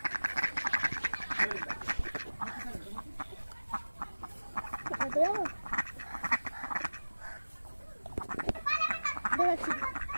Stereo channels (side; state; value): both; inverted; correlation -1.00